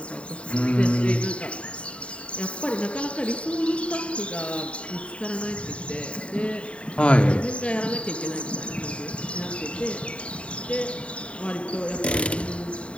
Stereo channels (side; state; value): right; late; 0.061 ms